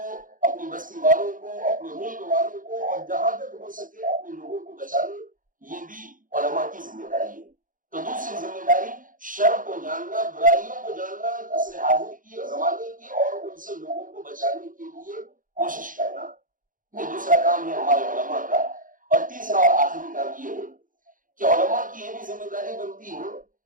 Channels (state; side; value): late; left; 0.39 ms